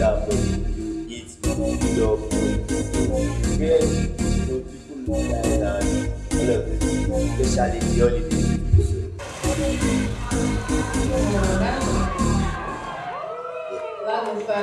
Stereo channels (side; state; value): both; identical; correlation 1.00